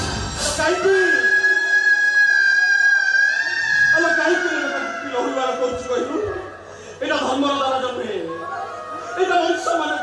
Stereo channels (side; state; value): both; identical; correlation 1.00